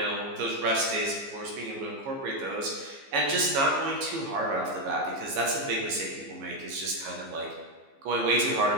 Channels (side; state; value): left; late; 15 ms